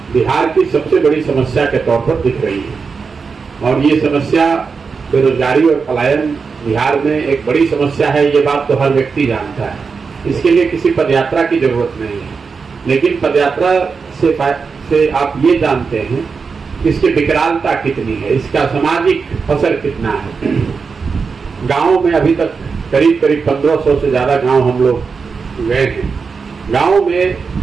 बिहार की सबसे बड़ी समस्या के तौर पर दिख रही है। और ये समस्या बेरोजगारी और पलायन बिहार में एक बड़ी समस्या है, ये बात तो हर व्यक्ति जानता है। इसके लिए किसी पदयात्रा की जरूरत नहीं है, लेकिन पदयात्रा से आप ये जानते हैं कि इसकी विकरालता कितनी है, इसका सामाजिक असर कितना है। गाँव में अभी तक करीब 1500 से ज्यादा गांव हम लोग गए हैं। गांव में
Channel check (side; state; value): left; quieter; 5.2 dB